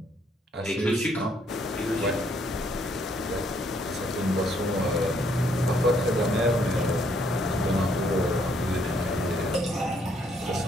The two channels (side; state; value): both; normal; correlation 0.69